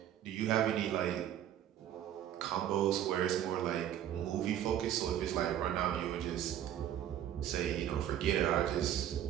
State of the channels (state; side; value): quieter; left; 10.9 dB